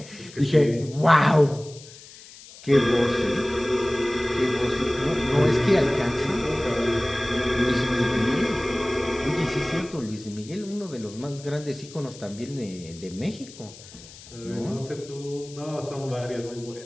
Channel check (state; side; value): noise; left; hiss, 19 dB below the sound